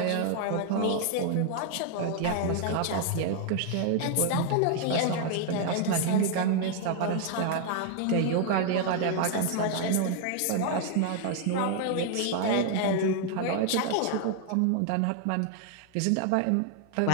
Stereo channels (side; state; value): both; different; correlation 0.00